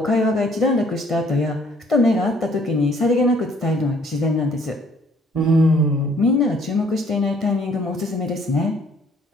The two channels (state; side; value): normal; both; correlation 0.61